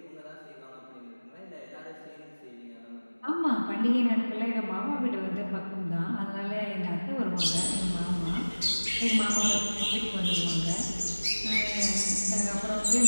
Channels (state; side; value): inverted; both; correlation -1.00